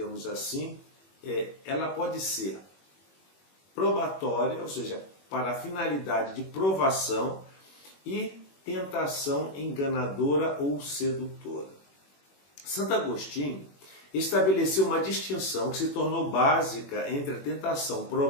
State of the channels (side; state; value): right; late; 21 ms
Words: assim, ela pode ser probatória, ou seja, para a finalidade de provação, e tentação enganadora ou sedutora. Santo Agostinho estabeleceu uma distinção que se tornou básica entre a tentação